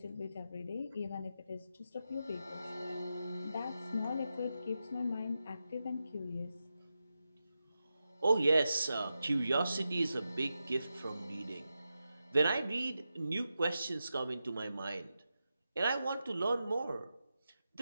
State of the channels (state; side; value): inverted; both; correlation -0.90